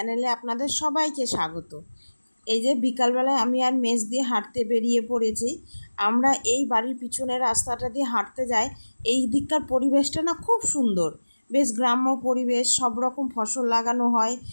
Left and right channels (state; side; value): inverted; both; correlation -1.00